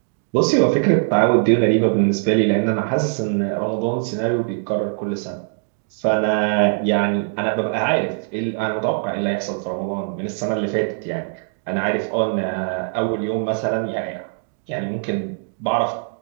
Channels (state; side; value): silent; left; digital silence